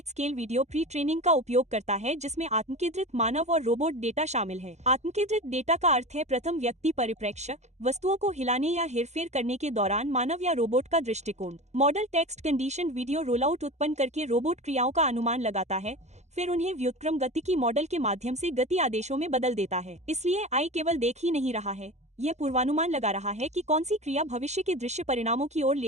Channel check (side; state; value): left; late; 0.33 ms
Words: scale video pre training का उपयोग करता है जिसमें आत्मकेंद्रित मानव और रोबोट डेटा शामिल है। आत्मकेंद्रित डेटा का अर्थ है प्रथम व्यक्ति परिप्रेक्ष्य, वस्तुओं को हिलाने या हेरफेर करने के दौरान मानव या रोबोट का दृष्टिकोण। Model text condition video rollout उत्पन्न करके रोबोट क्रियाओं का अनुमान लगाता है, फिर उन्हें व्युत्क्रम गतिकी मॉडल के माध्यम से गति आदेशों में बदल देता है। इसलिए आई केवल देख ही नहीं रहा है, यह पूर्वानुमान लगा रहा है कि कौन सी क्रिया भविष्य के दृश्य परिणामों की ओर